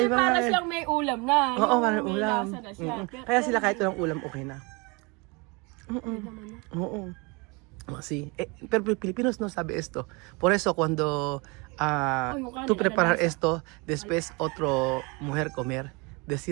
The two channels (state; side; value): quieter; left; 28.6 dB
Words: nga Para eh. siyang may ulam na. Oo, Yung parang may ulam. lasa na siya. Kaya sila kahit walang ulam, okay na. Okay naman na. Oo. Sí. Pero Filipinos no sabe esto. Por eso cuando yung kanin, tú preparar alalasa. esto, después otro mujer comer,